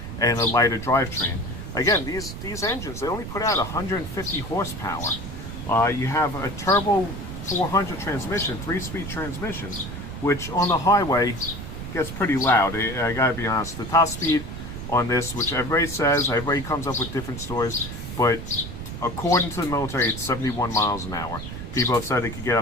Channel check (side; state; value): right; noise; rumble, 8 dB below the sound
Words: and a lighter drivetrain. Again, these engines, they only put out 150 horsepower. You have a turbo 400 transmission, 3-speed transmission, which on the highway gets pretty loud. I gotta be honest. The top speed on this, which everybody says, everybody comes up with different stories, but according to the military, it's 71 miles an hour. People have said it could get